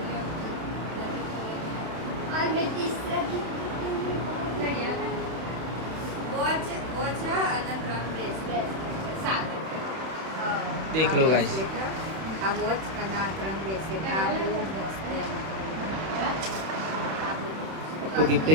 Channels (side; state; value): left; late; 31 ms